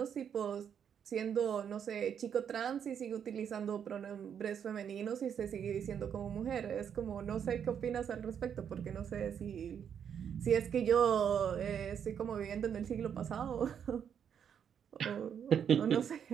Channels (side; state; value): left; quieter; 8.1 dB